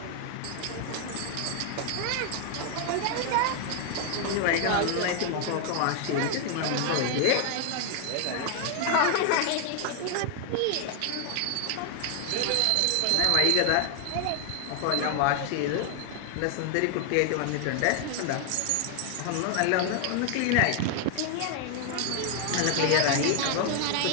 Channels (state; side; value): different; both; correlation 0.00